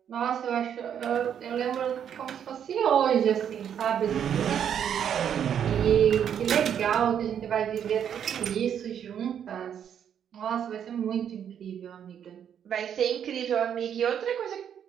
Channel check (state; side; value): quieter; left; 8.8 dB